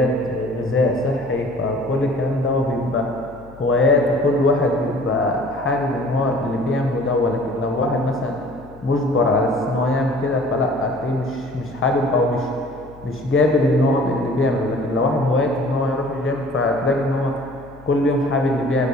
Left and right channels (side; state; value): left; noise; hum, 22 dB below the sound